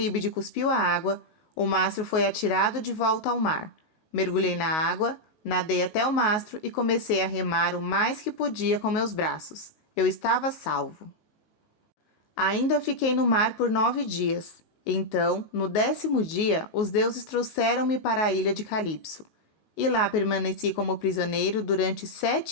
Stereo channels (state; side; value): late; right; 19 ms